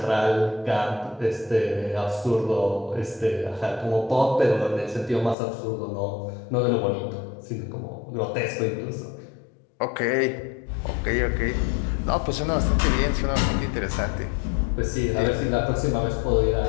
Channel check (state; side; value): drops out; right; at 5.4 s